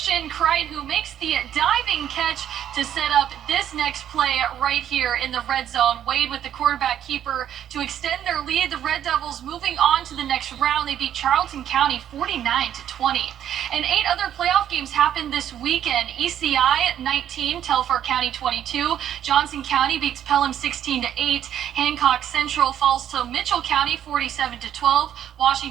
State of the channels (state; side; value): quieter; left; 10.3 dB